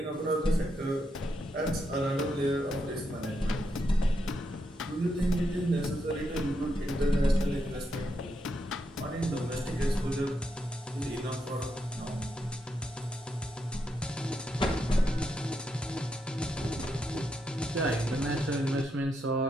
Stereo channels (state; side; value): normal; both; correlation 0.82